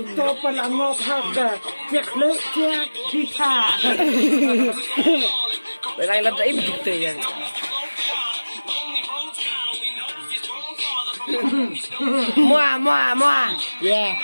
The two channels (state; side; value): inverted; both; correlation -1.00